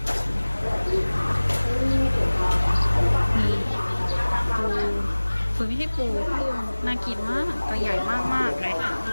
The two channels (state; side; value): inverted; both; correlation -1.00